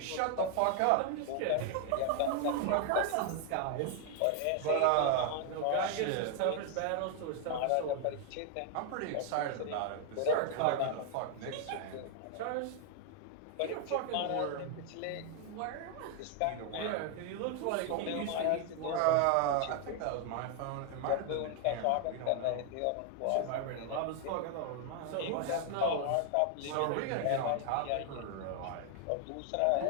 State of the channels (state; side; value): different; both; correlation 0.00